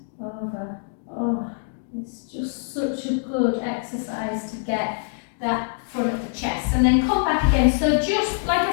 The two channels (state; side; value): silent; right; digital silence